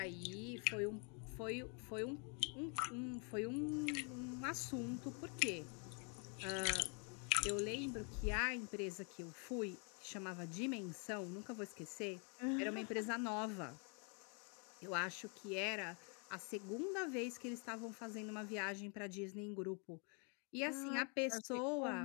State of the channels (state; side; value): quieter; right; 37.9 dB